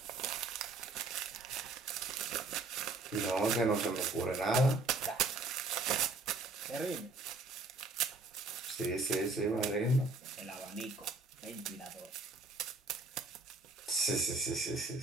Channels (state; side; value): quieter; left; 3.4 dB